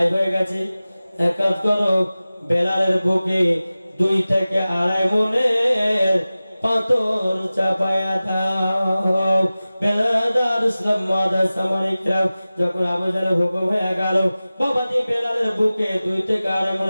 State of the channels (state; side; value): inverted; both; correlation -0.97